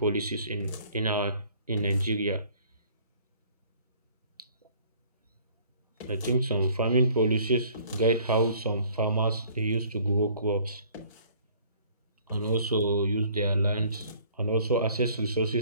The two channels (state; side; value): inverted; both; correlation -0.55